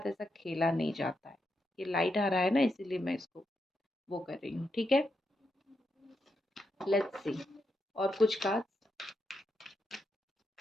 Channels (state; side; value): normal; both; correlation 0.83